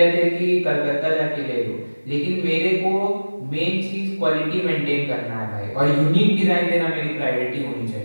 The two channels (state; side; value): inverted; both; correlation -1.00